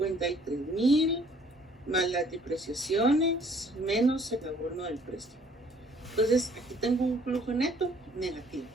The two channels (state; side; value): normal; both; correlation 0.59